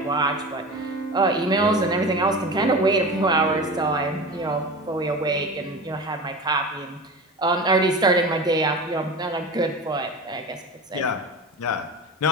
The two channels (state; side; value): normal; both; correlation 0.31